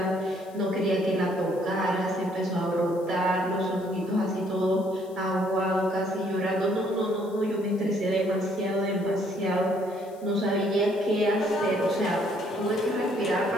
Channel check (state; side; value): noise; left; hiss, 27 dB below the sound